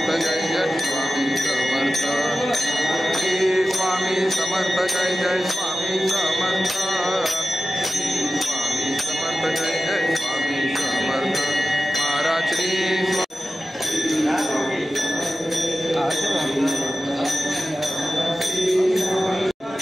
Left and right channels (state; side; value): normal; both; correlation 0.94